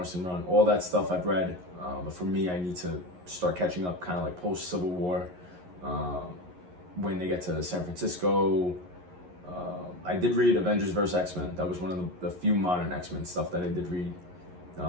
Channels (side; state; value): left; late; 11 ms